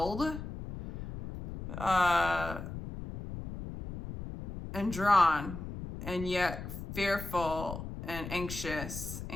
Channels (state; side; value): noise; left; rumble, 8 dB below the sound